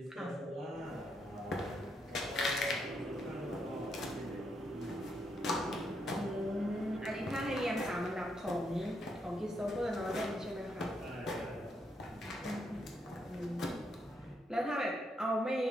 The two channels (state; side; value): normal; both; correlation 0.78